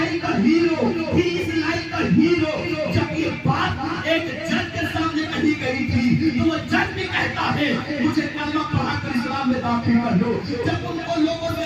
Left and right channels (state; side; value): identical; both; correlation 1.00